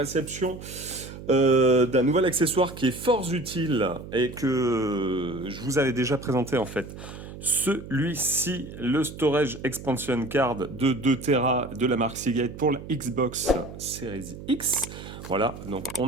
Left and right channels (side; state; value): right; noise; hum, 13 dB below the sound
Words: d'un nouvel accessoire qui est fort utile et que je vous avais déjà présenté en fait. Celui-ci, le Storage Expansion Card de 2 Tera de la marque Seagate pour la Xbox Series X. Voilà, donc